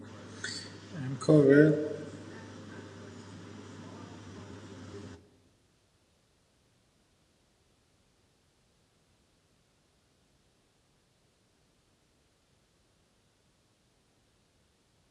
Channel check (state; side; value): identical; both; correlation 1.00